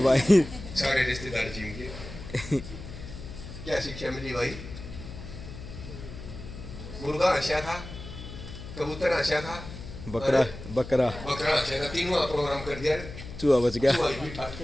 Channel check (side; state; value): left; noise; hum, 12 dB below the sound